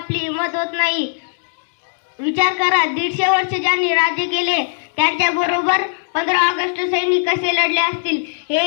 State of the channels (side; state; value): right; silent; digital silence